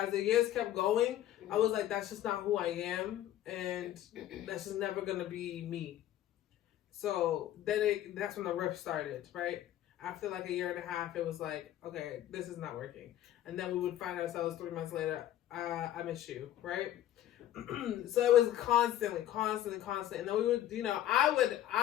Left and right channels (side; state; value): right; quieter; 12.5 dB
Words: the years kept going, I was like, that's just not who I am, and that's just never gonna be me. So then that's when the rift started, right? After like a year and a half, it was like, okay, this is not working. And then we would find ourselves 3 months later, I miss you, right? So it was constantly. And then we would,